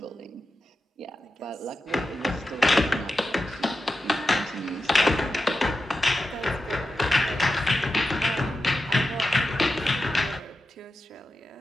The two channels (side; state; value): both; normal; correlation 0.91